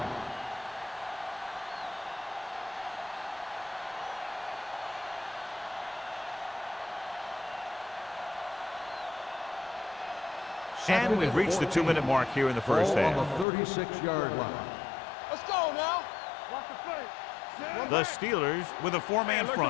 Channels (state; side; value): drops out; right; at 13.5 s